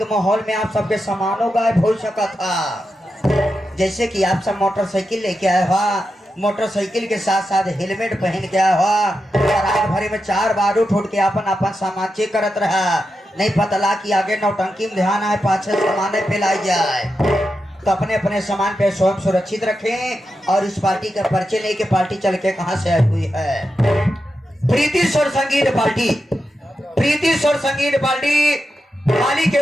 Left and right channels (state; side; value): normal; both; correlation 0.88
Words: माहौल में आप सबके सामानों गायब हो सका था। जैसे कि आप सब मोटरसाइकिल लेके आए हुआ, मोटरसाइकिल के साथ साथ हेलमेट पहन के आया हुआ और रात भरे में 4 बार उठ के अपन सामान चेक करत रहा। नहीं पता लगा कि आगे नौटंकी में ध्यान आए, पाछे सामान फैलाई जाए। तो अपने अपने सामान पे स्वयं सुरक्षित रखें और इस पार्टी का परिचय लेके पार्टी चल के कहां से आई हुई है। प्रीति स्वर संगीत पार्टी मालिक